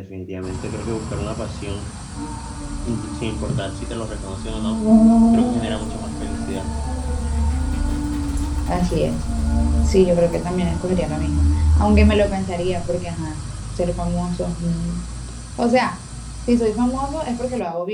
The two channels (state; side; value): identical; both; correlation 1.00